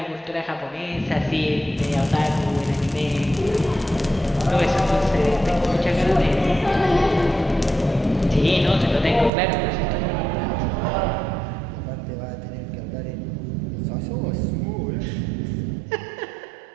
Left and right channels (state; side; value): drops out; left; at 9.3 s